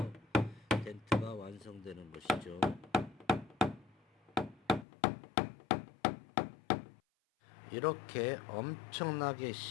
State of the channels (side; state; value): right; drops out; at 4.9 s